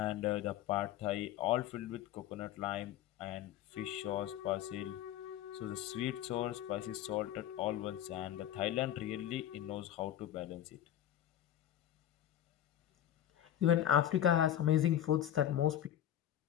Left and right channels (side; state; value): right; quieter; 11.4 dB